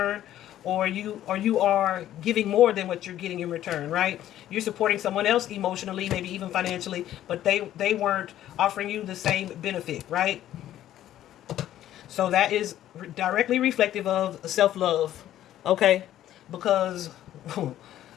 or you are giving more than what you're getting in return, right? You're supporting someone else emotionally, maybe even financially, but they weren't offering you the same benefit, right? So that is directly reflective of self-love, okay? Because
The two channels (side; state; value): right; quieter; 12.5 dB